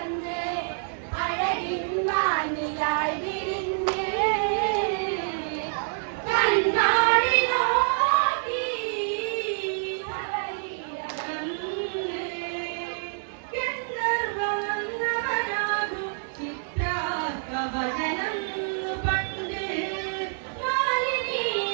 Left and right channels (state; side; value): silent; left; 60 dB below the other